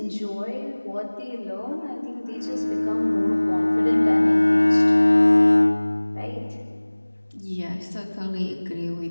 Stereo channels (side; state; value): both; inverted; correlation -1.00